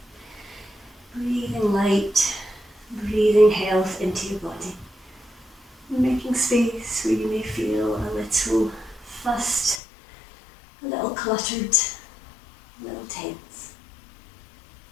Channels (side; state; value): right; drops out; at 9.8 s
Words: breathing light, breathing health into your body. Making space where you may feel a little fussed, a little cluttered, a little tense.